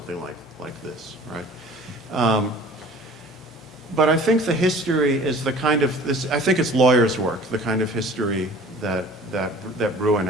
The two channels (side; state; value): both; normal; correlation 0.46